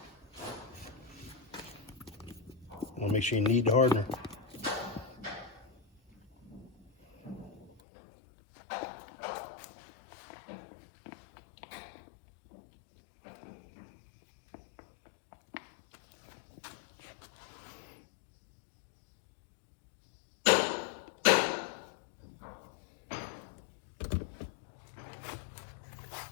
Make sure you knead the hardener.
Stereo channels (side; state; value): right; drops out; at 7.7 s